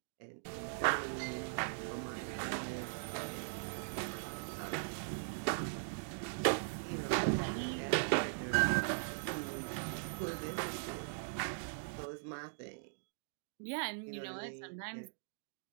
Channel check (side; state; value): left; silent; digital silence